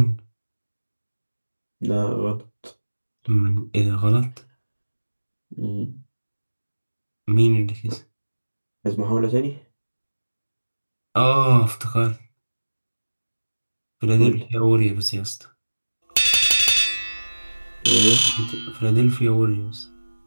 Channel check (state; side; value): inverted; both; correlation -1.00